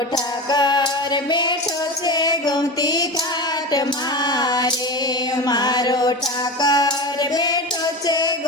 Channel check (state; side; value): normal; both; correlation 0.26